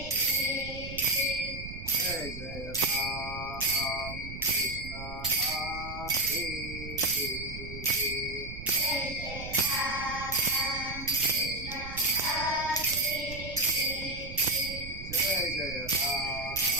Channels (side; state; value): right; noise; rumble, 10 dB below the sound